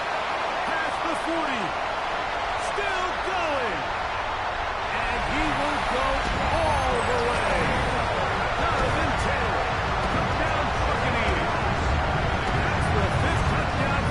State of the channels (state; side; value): identical; both; correlation 1.00